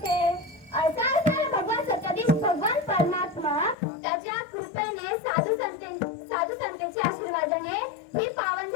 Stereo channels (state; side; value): drops out; right; at 3.8 s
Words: असा असणारा भगवान सत्याधीश भगवान परमात्मा त्याच्या कृपेने साधू संतांच्या आशीर्वादाने ही पावन